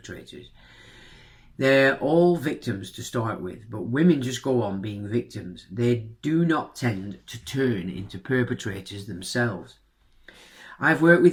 They're all victims to start with, but women just go on being victims. They do not tend to turn into perpetrators themselves. I've worked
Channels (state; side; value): identical; both; correlation 1.00